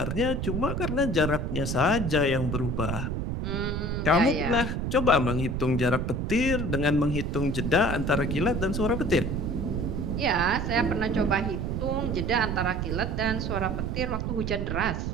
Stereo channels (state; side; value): noise; right; rumble, 2 dB below the sound